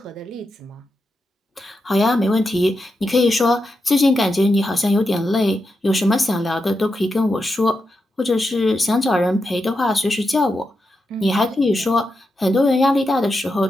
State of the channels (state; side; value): normal; both; correlation 0.87